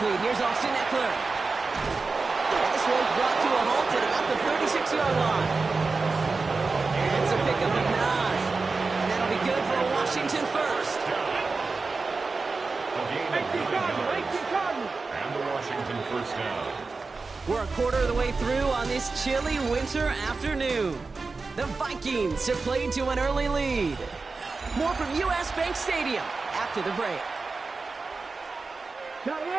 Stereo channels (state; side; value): quieter; left; 4.1 dB